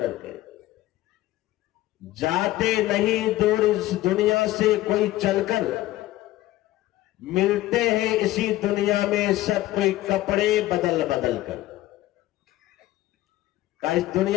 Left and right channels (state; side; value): quieter; right; 16.0 dB